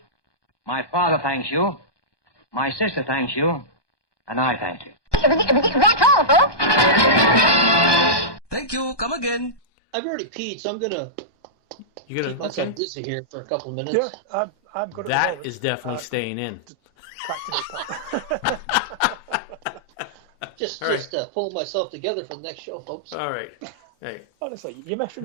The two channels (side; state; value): right; late; 1.2 ms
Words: my father thanks you, my sister thanks you, and I thank you. That's all, folks. Thank you. Come again. I've already peed, so I'm gonna keep myself busy here for a couple of minutes. Yeah, I'm good at the That moment. is definitely staying in. Just pulling myself together for the next show, folks. All right. Hey. Honestly, you